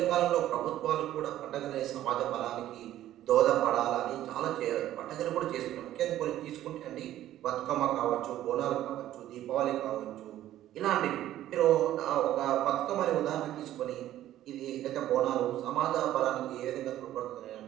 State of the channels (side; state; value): left; quieter; 13.1 dB